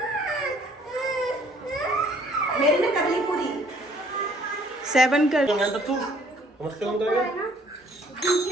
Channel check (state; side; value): normal; both; correlation 0.60